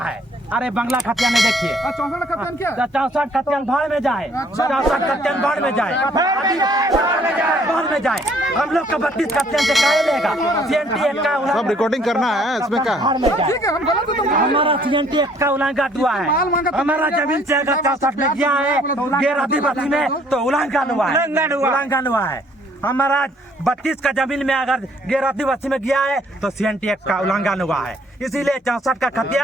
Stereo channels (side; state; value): both; normal; correlation 0.62